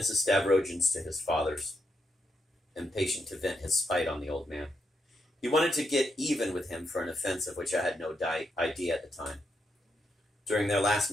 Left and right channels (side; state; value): both; normal; correlation 0.81